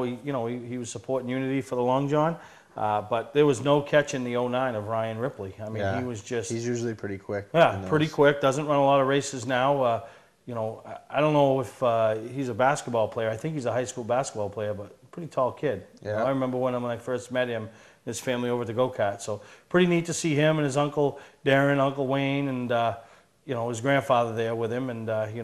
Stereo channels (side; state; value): both; identical; correlation 1.00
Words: he was supporting Unity for the Long John. But there was no catching the 09 of Ryan Ripley. I mean, he was just... He's usually pretty quick. Yeah, pretty quick. Doesn't run a lot of races now. You know, I don't know if he's a basketball player. I think he's a high school basketball player, but pretty tall kid. You know, I remember when I first met him, his family over at the go-kart. So pretty neat to see him and his uncle Darren, Uncle Wayne, and you know, his grandfather there with him. And you